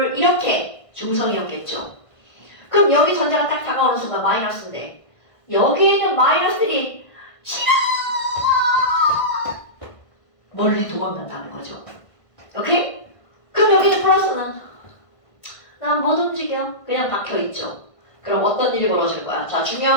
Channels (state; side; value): late; right; 1.5 ms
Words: 이렇게 중성이었겠죠. 그럼 여기 전자가 딱 다가오는 순간 마이너스인데 여기에 있는 마이너스들이 싫어! 멀리 도망간다는 거죠. 오케이? 그럼 여기는 플러스는 난 못 움직여. 그냥 박혀있죠. 그럼 어떤 일이 벌어질 거야? 자,